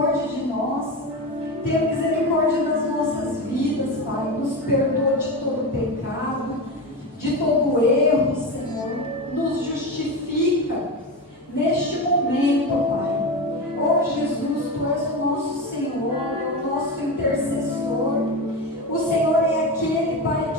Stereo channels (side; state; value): both; normal; correlation 0.21